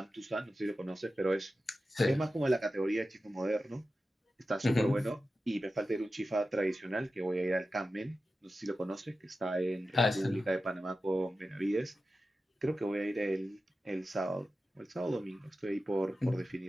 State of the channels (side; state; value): both; normal; correlation 0.93